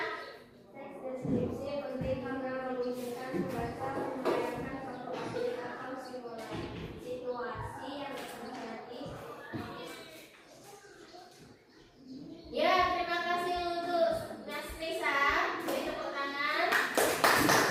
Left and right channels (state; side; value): identical; both; correlation 1.00